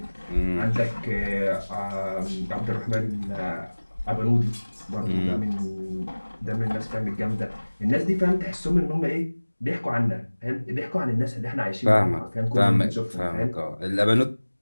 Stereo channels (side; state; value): both; inverted; correlation -1.00